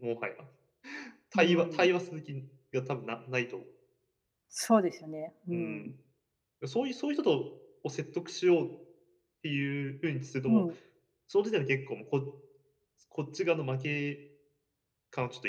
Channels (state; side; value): identical; both; correlation 1.00